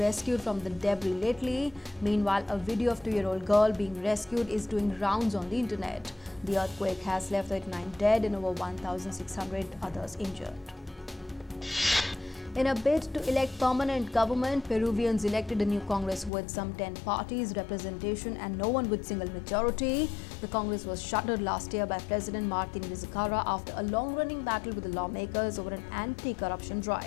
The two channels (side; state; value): right; drops out; at 16.3 s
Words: from the debris lately. Meanwhile, a video of a 2-year-old girl being rescued is doing rounds on the internet. The earthquake has left 39 dead and over 1,600 others injured. In a bid to elect permanent government, Peruvians elected a new Congress with some 10 parties representation and no one with single majority. The Congress was shuttered last year by President Martin Vizcarra after a long-running battle with the lawmakers over an anti-corruption